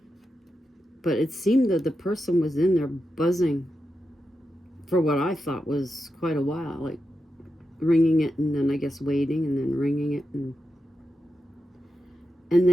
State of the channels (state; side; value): normal; both; correlation 0.88